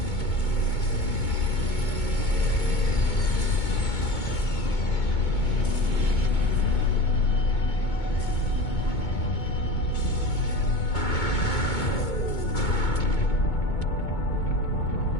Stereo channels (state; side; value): late; right; 2.2 ms